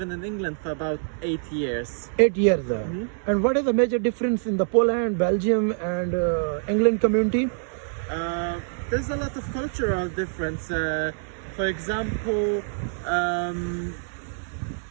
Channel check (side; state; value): left; silent; 61 dB below the other